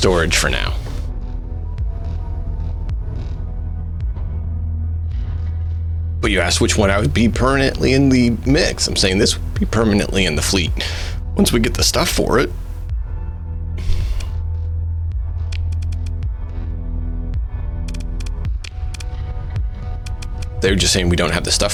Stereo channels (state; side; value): identical; both; correlation 1.00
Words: for now. But you asked which one I would be permanently in the mix. I'm saying this would be permanently in the fleet once we get the stuff for it. They're just saying we don't have the stuff